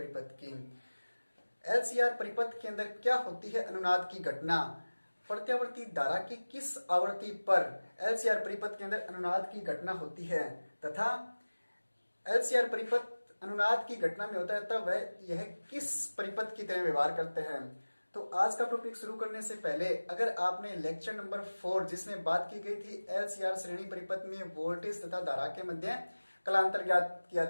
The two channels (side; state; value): both; inverted; correlation -1.00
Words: की। एलसीआर परिपथ के अंदर क्या होती है अनुनाद की घटना, प्रत्यावर्ती धारा की किस आवृत्ति पर एलसीआर परिपथ के अंदर अनुनाद की घटना होती है तथा एलसीआर परिपथ अनुनाद की घटना में होता है तब वह यह किस परिपथ की तरह व्यवहार करते हैं। तो आज का टॉपिक शुरू करने से पहले अगर आपने लेक्चर नंबर 4 जिसमें बात की गई थी एलसीआर श्रेणी परिपथ में वोल्टेज तथा धारा के मध्य कलांतर ज्ञात किया